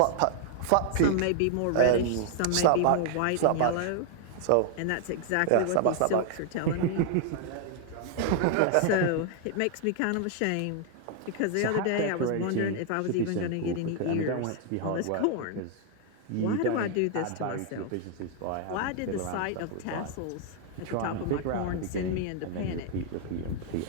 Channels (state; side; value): different; both; correlation 0.00